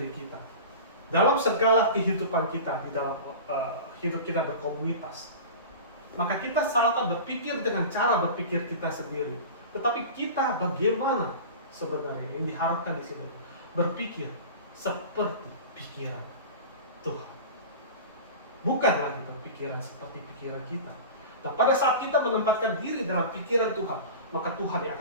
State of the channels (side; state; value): both; inverted; correlation -0.33